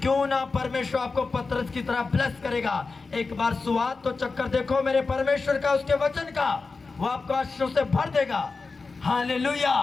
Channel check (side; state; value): right; quieter; 4.2 dB